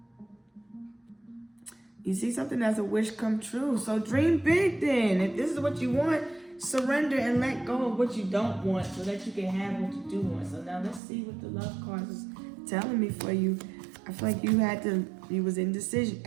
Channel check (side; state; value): left; drops out; at 11.0 s